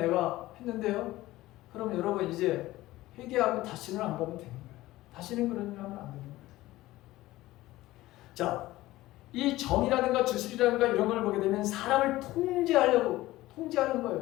했는데요. 그럼 여러분 이제 회개하고 다시는 안 가면 되는 거예요. 다시는 그런 일 하면 안 되는 거예요. 자, 이 점이라든가 주술이라든가 이런 걸 보게 되면 사람을 통제하는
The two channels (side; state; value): right; quieter; 17.2 dB